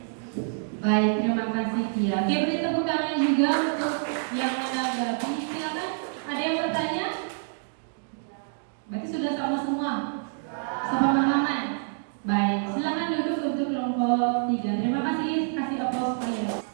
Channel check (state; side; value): silent; left; digital silence